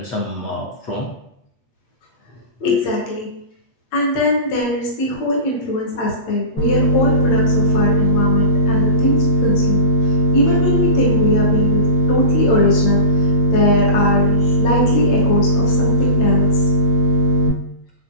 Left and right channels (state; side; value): late; right; 8.8 ms